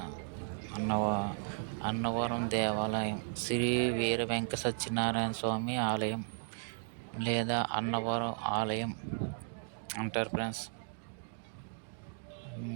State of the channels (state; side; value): silent; left; digital silence